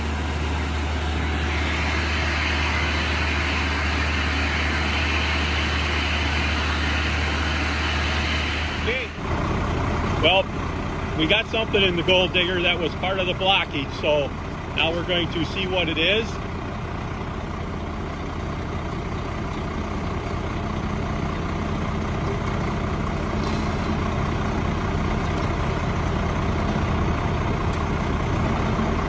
Okay. Well, we got something in the gold digger that was part of the blockage, so now we're going to see what it is.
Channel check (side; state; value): both; identical; correlation 1.00